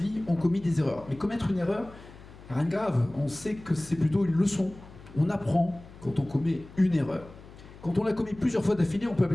ont commis des erreurs. Mais commettre une erreur, rien de grave. On sait que c'est plutôt une leçon. On apprend quand on commet une erreur. Quand on l'a commis plusieurs fois d'affilée, on peut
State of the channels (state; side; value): noise; left; hum, 19 dB below the sound